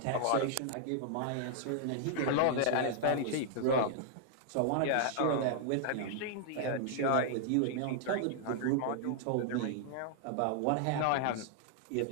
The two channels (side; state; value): both; different; correlation -0.01